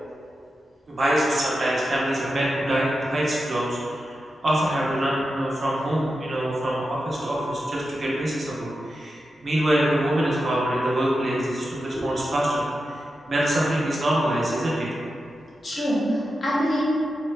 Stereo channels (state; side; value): normal; both; correlation 0.90